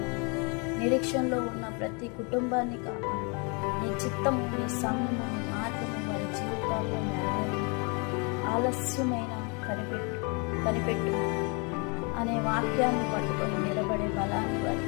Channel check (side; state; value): right; quieter; 33.2 dB